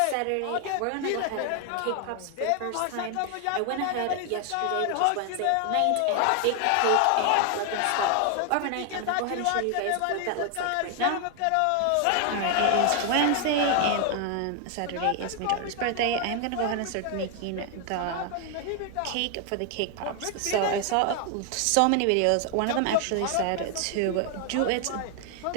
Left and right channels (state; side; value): different; both; correlation 0.00